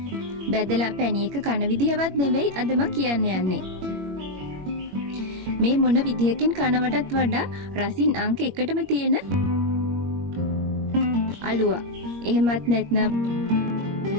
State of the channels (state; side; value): late; left; 21 ms